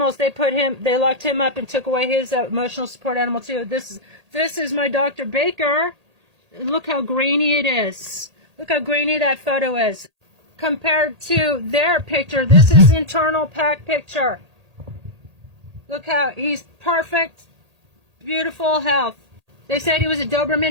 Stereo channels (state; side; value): late; left; 1.8 ms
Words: they locked him up and took away his emotional support animal too. This is my Dr. Baker. Look how grainy it is. Look how grainy that photo is. Compared to their picture, this is internal pack picture. Look how he's perfect, beautiful health. They said he was a